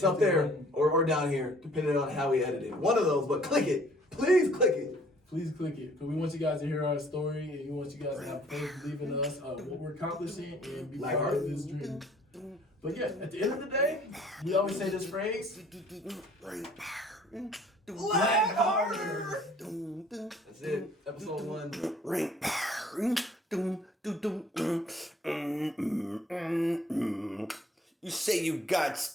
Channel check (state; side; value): normal; both; correlation 0.57